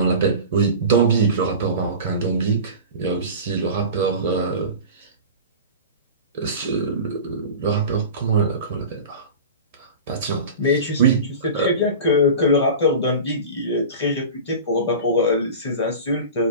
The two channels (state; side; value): inverted; both; correlation -0.33